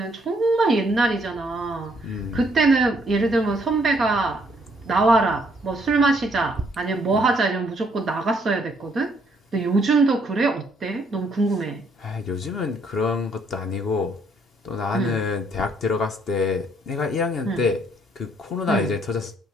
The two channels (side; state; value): both; normal; correlation 0.68